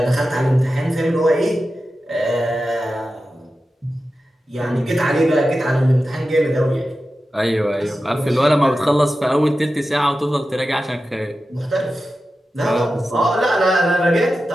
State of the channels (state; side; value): normal; both; correlation 0.92